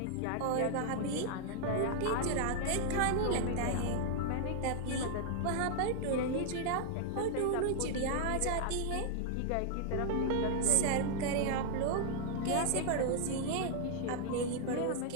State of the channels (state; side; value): different; both; correlation -0.01